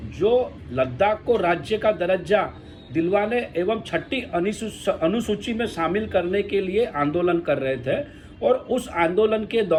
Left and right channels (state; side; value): identical; both; correlation 1.00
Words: जो लद्दाख को राज्य का दर्जा दिलवाने एवं 6ठी अनुसूची में शामिल करने के लिए आंदोलन कर रहे थे और उस आंदोलन के